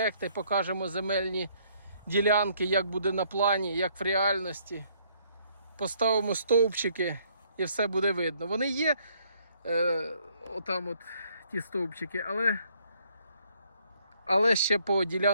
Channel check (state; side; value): inverted; both; correlation -0.66